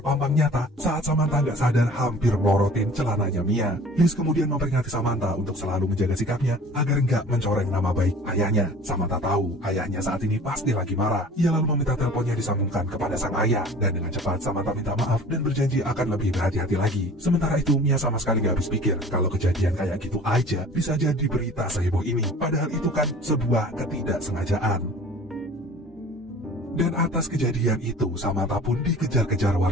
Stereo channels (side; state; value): both; normal; correlation 0.45